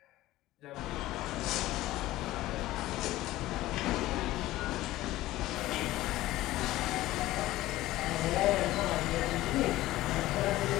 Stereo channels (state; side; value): quieter; right; 16.5 dB